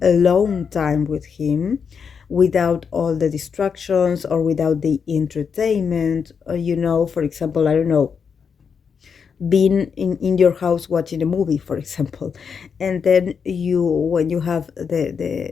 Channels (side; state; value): right; quieter; 6.3 dB